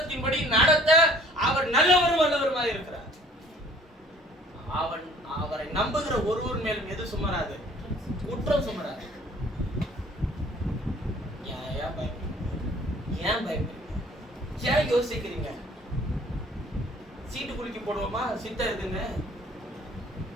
நடத்த அவர் நல்லவரும் வல்லவருமாக இருக்கிறார். அவரை நம்புகிற ஒருவர் மேலும் எது சுமராது? குற்றம் சுமராது. ஏன் பயப்படுறீங்க? ஏன் யோசிக்கிறீங்க? சீட்டு குலுக்கி போடுவோமா? சித்தம் எதுங்க?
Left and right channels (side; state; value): both; normal; correlation 0.53